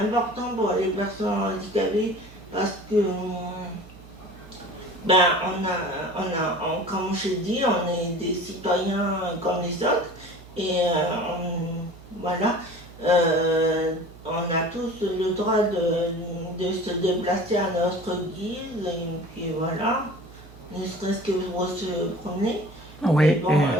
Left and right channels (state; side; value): noise; right; hum, 20 dB below the sound